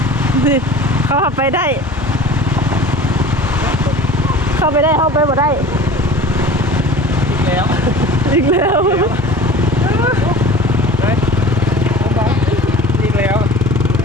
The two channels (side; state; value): both; normal; correlation 0.41